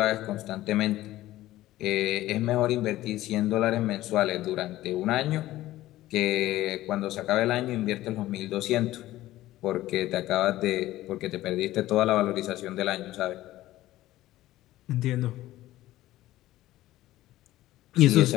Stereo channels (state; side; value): quieter; right; 15.6 dB